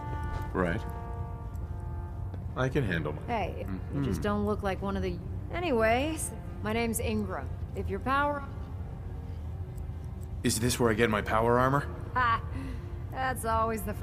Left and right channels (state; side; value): identical; both; correlation 1.00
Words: Right. I can handle myself. Hey, you just don't look like one of the... Anyways, my name's Ingram. If your power... Is this where I get my power armor? Ha! That's always the